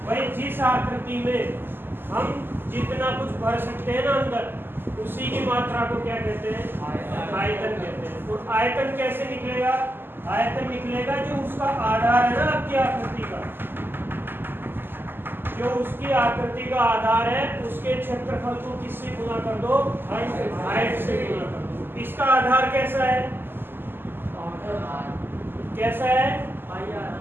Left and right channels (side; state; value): left; late; 0.098 ms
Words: भाई जिस आकृति में हम जितना कुछ भर सकते हैं ना अंदर, उसी की मात्रा को क्या कहते हैं आयतन कहते हैं। और आयतन कैसे निकलेगा, आयतन निकलेगा जो उसका आधार है ना आपकी आकृति का, जो उसकी आकृति का आधार है उसके क्षेत्रफल को किससे गुना कर दो हाइट से गुना कर दो। इसका आधार कैसा है, कैसा है?